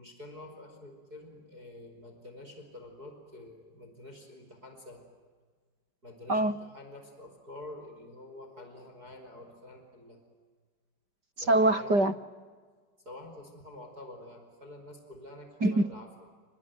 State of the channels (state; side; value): late; left; 5.1 ms